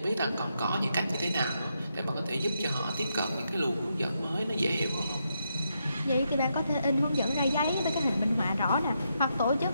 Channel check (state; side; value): inverted; both; correlation -0.81